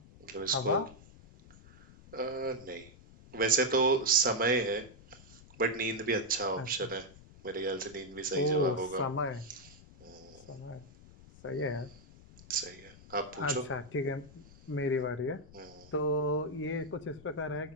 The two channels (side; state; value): left; noise; rumble, 21 dB below the sound